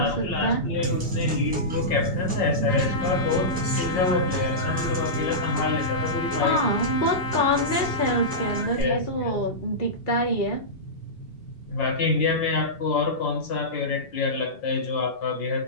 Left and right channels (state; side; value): late; right; 2.7 ms